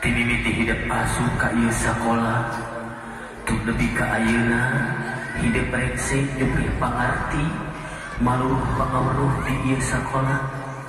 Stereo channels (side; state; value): both; identical; correlation 1.00